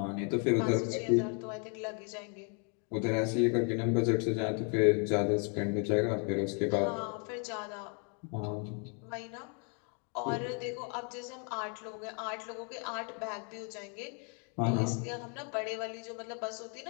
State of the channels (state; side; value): quieter; right; 38.7 dB